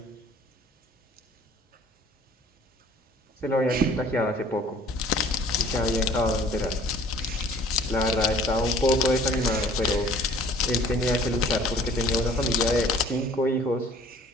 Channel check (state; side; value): normal; both; correlation 0.52